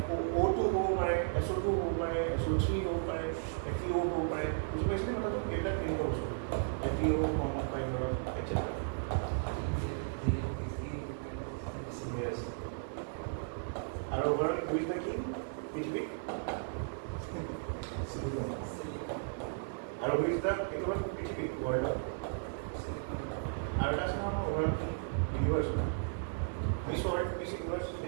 হ'ব পাৰে, SO2 হ'ব পাৰে, SO3 হ'ব পাৰে, FeO হ'ব পাৰে, বুজি পাইছেনে কথাটো? এইবিলাক কেনেকুৱা বস্তু FeO ফৰ্মত পায় ধৰক etc. Yes. আৰু ওভাৰ হুইজ দ্য কিং পৃথিৱী আৰু হুইজ দ্য এইটো হ'ল পৃথিৱী ৱৰ্ল্ডত আৰু এটা আছে নহয় আমাৰ over king universe miss world miss universe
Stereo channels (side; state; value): left; silent; digital silence